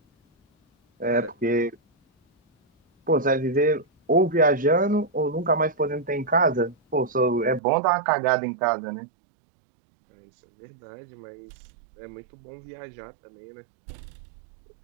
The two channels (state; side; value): drops out; left; at 7.6 s